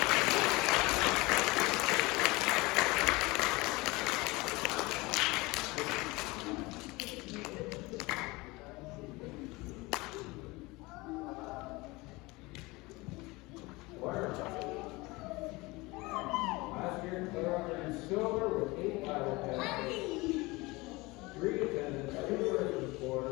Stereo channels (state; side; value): quieter; right; 23.0 dB